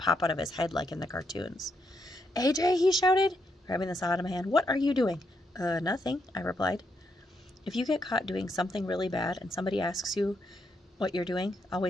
out of his head like in the cartoons. AJ, he shouted, grabbing the saw out of my hand. What are you doing? Nothing, I replied. If you get caught doing something really bad and somebody asks you what you're doing,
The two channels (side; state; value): both; normal; correlation 0.79